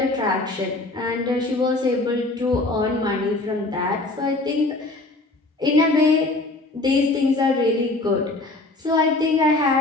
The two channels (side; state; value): right; quieter; 3.0 dB